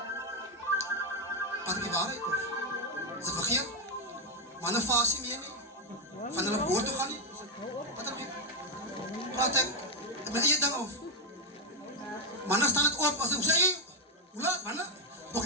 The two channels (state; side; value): normal; both; correlation 0.05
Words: Wat die waarheid of? Is dit vergeet? Manne vas nie meer nie. Van hulle woord toe gaan nie. Wat dan? Praat ek met eie ding of? Manne staan het op, as ek sê, hoe laat, manne? Ook